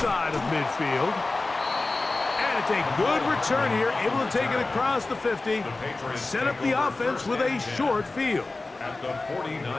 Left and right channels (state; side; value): quieter; right; 3.3 dB